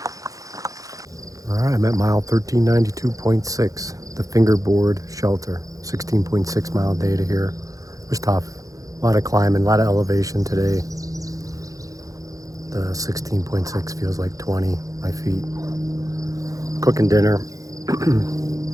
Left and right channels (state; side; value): late; left; 0.17 ms